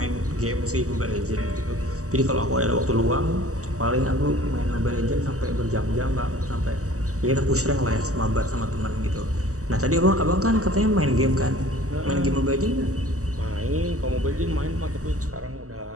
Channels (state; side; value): late; left; 0.65 ms